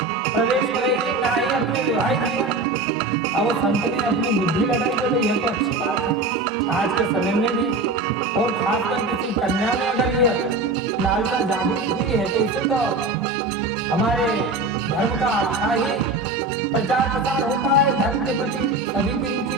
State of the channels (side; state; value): left; quieter; 3.2 dB